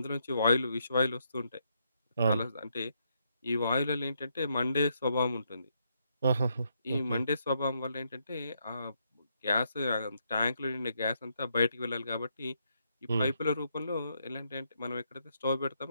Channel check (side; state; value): both; inverted; correlation -0.77